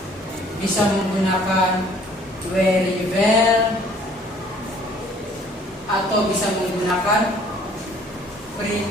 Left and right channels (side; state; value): both; normal; correlation 0.56